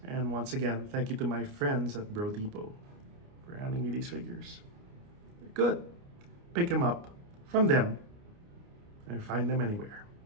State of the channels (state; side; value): late; left; 29 ms